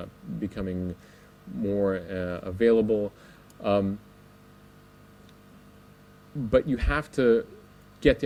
becoming more available. But you have to get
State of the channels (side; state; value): both; identical; correlation 1.00